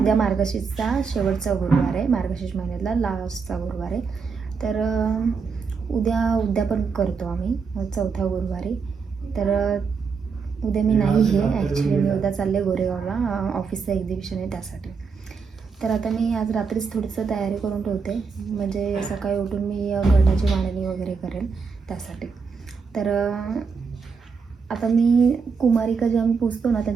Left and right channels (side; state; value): left; quieter; 5.4 dB